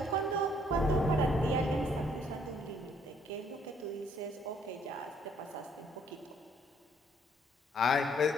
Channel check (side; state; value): both; normal; correlation 0.65